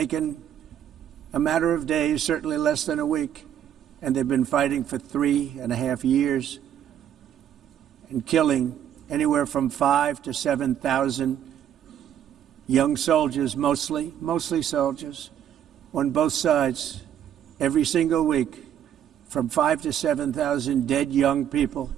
a matter of days, certainly less than a week. And they've been fighting for 3.5 years and killing anywhere from 5,000 to 7,000 young soldiers, mostly soldiers, on both sides, every single week, from 5,000 to 7,000 dead young people,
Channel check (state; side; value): quieter; left; 9.9 dB